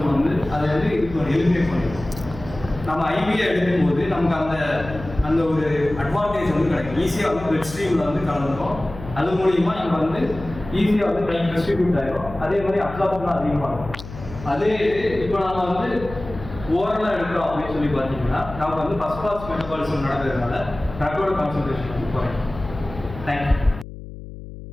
வந்து அதை வந்து இப்போ எலிமினேட் பண்ணிடுவோம். நம்ம ஐவியா எடுக்கும்போது நமக்கு அந்த ஒரு அட்வான்டேஜ் வந்து கிடைக்கும். ஈஸியாக வந்து பிளட் ஸ்ட்ரீமில் வந்து கலந்துரும். அது மூலியமாக நம்ம வந்து ஈஸியாக வந்து டைம் டிஸ்ட்ரிபியூட் ஆகிடும். அதே மாதிரி அப்சார்ப்ஷன் அதிகமாகும். அதே இப்போ நம்ம வந்து ஓரலாக எடுக்கிறோம் அப்படின்னு சொல்லி பார்த்தீங்கன்னா, நமக்கு வந்து ஃபர்ஸ்ட் பாஸ் மெட்டபாலிசம் நடக்கிறதுனால ட்ரக்கோட கான்சன்ட்ரேஷன் வந்து குறையும். தேங்க்யூ.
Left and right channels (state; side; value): noise; left; hum, 13 dB below the sound